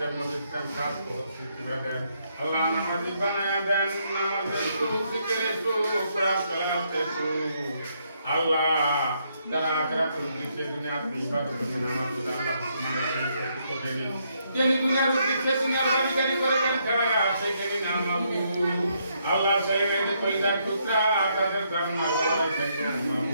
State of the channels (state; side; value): inverted; both; correlation -0.75